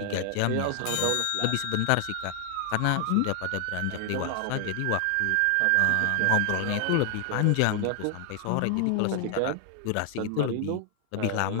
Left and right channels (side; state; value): both; different; correlation 0.00